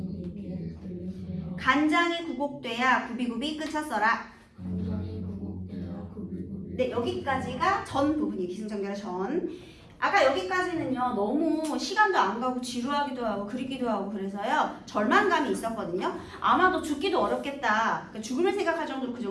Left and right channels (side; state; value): both; identical; correlation 1.00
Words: 네 귀에 들릴 소니 간장이 구곡돼야 구비구비 끝쳤어라. 간장이 구곡돼야 구비구비 네, 여기까지가 전 부분이에요. 기승전결의 전. 아까 여기까지는요 너무 시간도 안 가고 지루하기도 하고 그리기도 하고 그래서요 절망감이 있었거든요. 아마도 죽기도 어렵겠다. 그러니까 죽음을 생각할 정도로 그